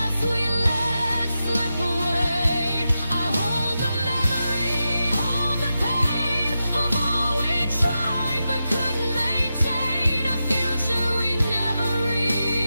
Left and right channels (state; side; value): inverted; both; correlation -0.89